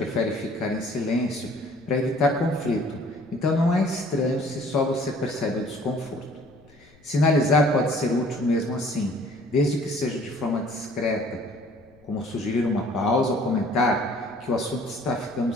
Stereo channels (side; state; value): left; noise; rumble, 29 dB below the sound